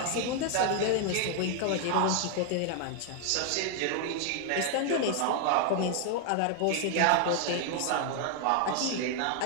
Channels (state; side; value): different; both; correlation 0.00